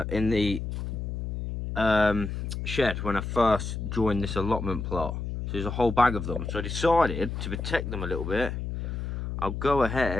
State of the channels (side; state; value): left; noise; hum, 4 dB below the sound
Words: the shed when I first joined this allotment plot. So there's a whole bag of them. So I decided to protect them a little bit. I'll go